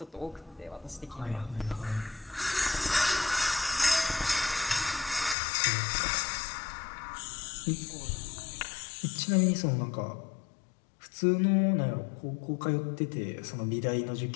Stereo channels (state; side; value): drops out; right; at 5.4 s